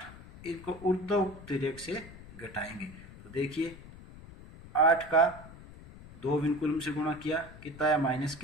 इनको ऊर्ध्वमुक्त रेख से घटाएंगे। तो देखिए 8 का 2 विनकुलम से गुणा किया कितना आया माइनस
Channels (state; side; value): noise; left; rumble, 17 dB below the sound